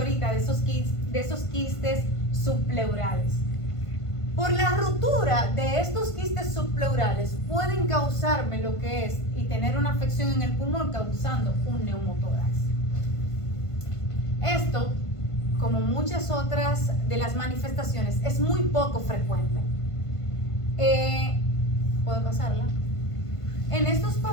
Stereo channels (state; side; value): late; right; 1.5 ms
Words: de esos quistes subpleurales. Por la ruptura de estos quistes subpleurales pueden causarme lo que es y tener una afección en el pulmón causando un neumotórax. Esto, como muchas otras de las manifestaciones, es muy poco frecuente. ¿Puedo pasarla? En estos